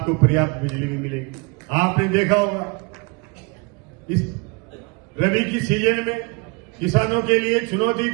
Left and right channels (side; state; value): left; quieter; 29.9 dB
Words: पर्याप्त बिजली भी मिलेगी। आपने देखा होगा इस रबी की सीजन में किसानों के लिए चुनौती